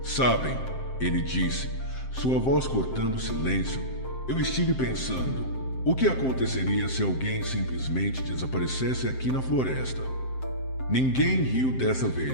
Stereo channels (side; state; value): right; late; 7.7 ms